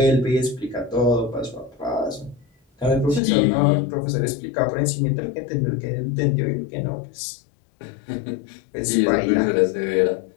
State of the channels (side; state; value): right; drops out; at 3.2 s